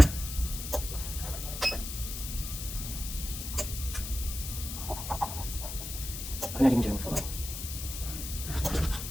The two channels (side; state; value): left; noise; hiss, 7 dB below the sound